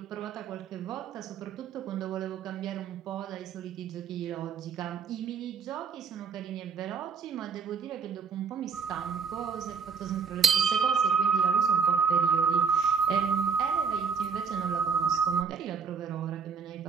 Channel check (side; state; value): left; quieter; 5.9 dB